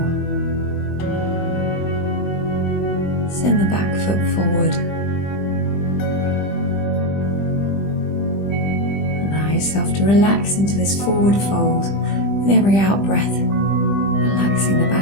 Send the back foot forward. Yourself to relax into this forward fold with every out breath, relaxing the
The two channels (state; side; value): late; right; 20 ms